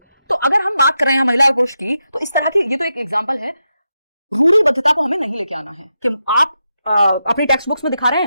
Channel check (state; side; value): inverted; both; correlation -0.87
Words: तो अगर हम बात कर रहे हैं महिला और पुरुष की, तो इस तरह की ये तो एक एग्जाम्पल है। रूढ़िबद्धता को हमें नहीं लेके आना है कि आप अपनी टेक्स्ट बुक्स में दिखा रहे